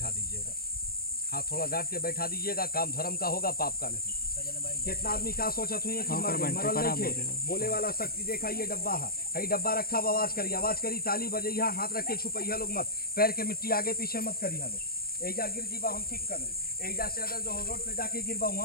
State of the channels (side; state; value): right; late; 0.44 ms